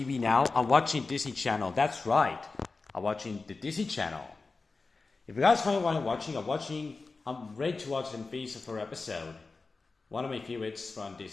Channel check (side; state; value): right; quieter; 4.0 dB